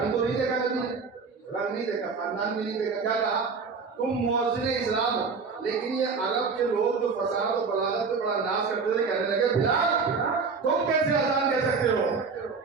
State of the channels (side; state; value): left; quieter; 5.0 dB